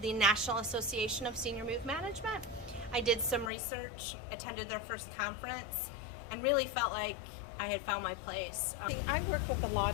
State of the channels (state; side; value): drops out; right; at 3.5 s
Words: National Association of Senior Move Management. I did some research, attended their first conference, and really felt like I had found my place. I work with a